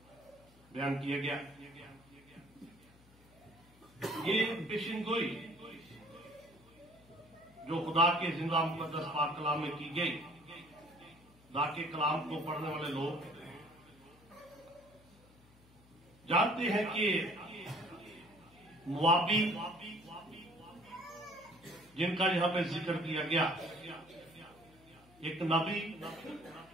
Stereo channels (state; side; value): noise; left; hum, 26 dB below the sound